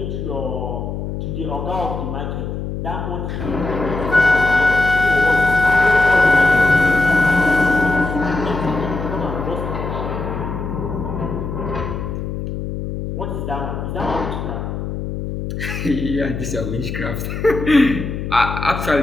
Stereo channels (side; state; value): left; noise; hum, 5 dB below the sound